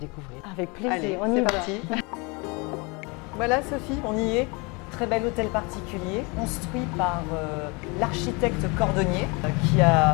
Avec plaisir, Allez, on y c'est va. parti. Voilà Sophie, on y est. Très bel hôtel particulier, construit par l'architecte Cordonnier, qui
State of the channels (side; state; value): right; quieter; 29.0 dB